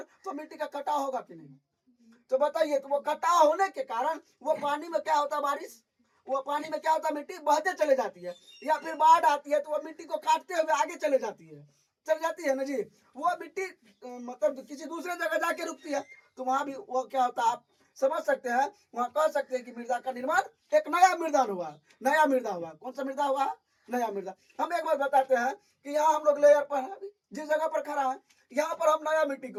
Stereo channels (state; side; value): identical; both; correlation 1.00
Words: तो मिट्टी का कटाव होगा कि नहीं? तो बताइए, तो वो कटाव होने के कारण वो पानी में क्या होता है? बारिश, वो पानी में क्या होता है? मिट्टी बहते चले जाती है या फिर बाढ़ आती है तो वो मिट्टी को काटते हुए आगे चले जाती है ना जी। वो मिट्टी मतलब किसी दूसरे जगह जाके रुकती है तो वहां भी वो क्या होता है आप समझ सकते हैं। वहां कह सकते हैं कि मृदा का निर्माण एक नया मृदा हुआ। कौन सा मृदा हुआ? नया मृदा। हम एक बार बताते हैं कि यहाँ हम लोग लेयर पर है, जिस जगह पर खड़ा है यहाँ पर हम नया मिट्टी